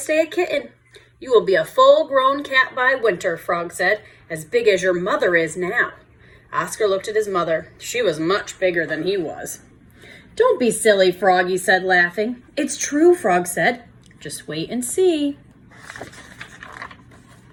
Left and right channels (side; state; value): both; identical; correlation 1.00